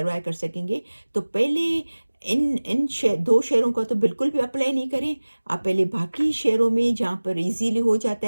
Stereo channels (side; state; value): both; inverted; correlation -1.00